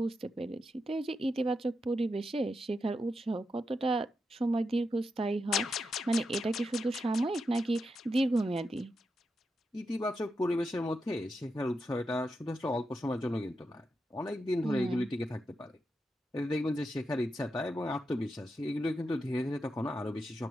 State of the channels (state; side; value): normal; both; correlation 0.86